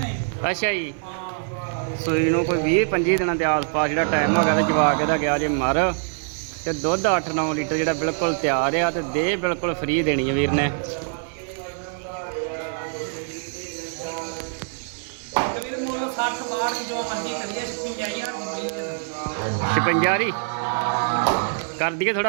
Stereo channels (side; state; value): left; silent; digital silence